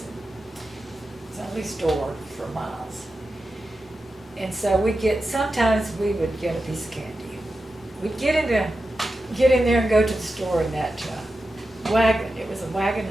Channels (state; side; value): normal; both; correlation 0.91